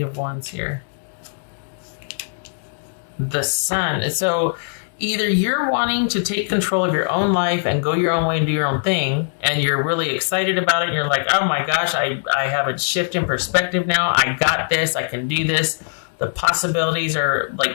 of Wands here? The Sun. So either you're wanting to take control of your own life and go your own way and do your own thing, and you're really excited about it, and you're like, oh my gosh, I have a shift in perspective now. I got this. I can do this. The possibilities are,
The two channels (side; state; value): right; silent; digital silence